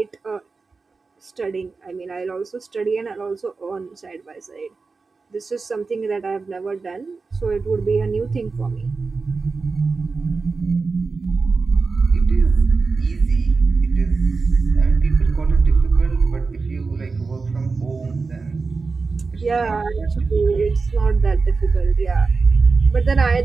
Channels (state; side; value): quieter; left; 4.3 dB